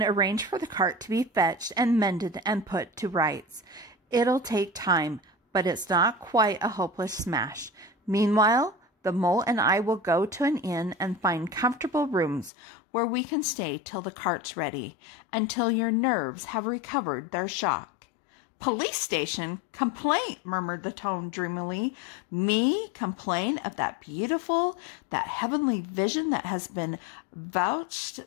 arrange for the cart to be fetched and mended and put to rights. It'll take time, but it's not quite a hopeless smash. Meanwhile, the Mole and I will go to an inn and find comfortable rooms where we can stay till the cart's ready, until your nerves have recovered their shock." "Police station? Complaint?" murmured the Toad dreamily. "Me complain of that beautiful, that heavenly vision that has been vouched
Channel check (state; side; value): drops out; right; at 12.5 s